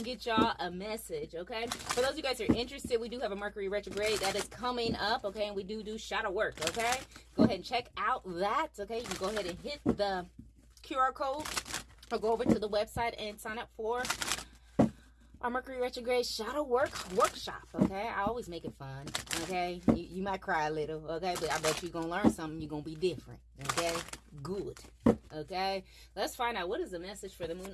get y'all a message, okay? For those of you guys who are interested, we do have a Mercury retrograde that is coming up, okay? And we do shadow work, okay? Go ahead and check out that, okay? You can go ahead and hit the QR code or go over to the website and sign up for our Mercury retrograde shadow workshop, okay? I always make it fun, okay? You might cry a little, okay? But I bet you're going to learn something. You're going to be different, okay? Good, okay? Let's find out what is the message for the Moon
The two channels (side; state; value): both; identical; correlation 1.00